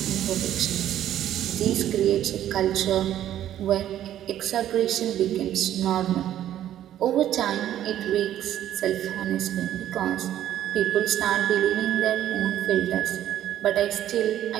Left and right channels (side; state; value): left; quieter; 11.7 dB